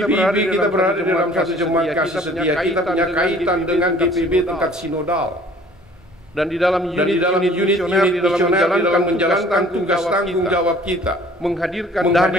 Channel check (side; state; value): both; normal; correlation 0.52